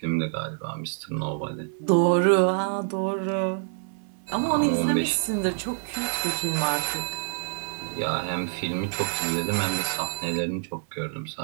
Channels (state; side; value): silent; left; digital silence